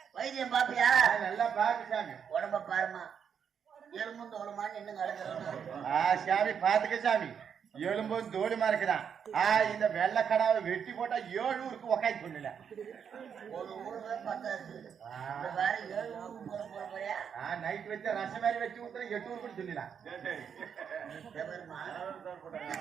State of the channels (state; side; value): quieter; left; 7.5 dB